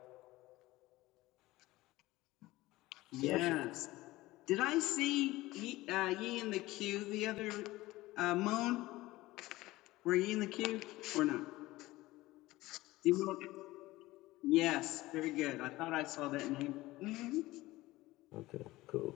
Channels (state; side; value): quieter; right; 18.5 dB